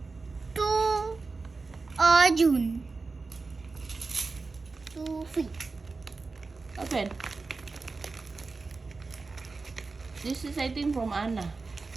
To Arjun. To feet. Open. This is, I think, from Anna.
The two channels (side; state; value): left; quieter; 4.0 dB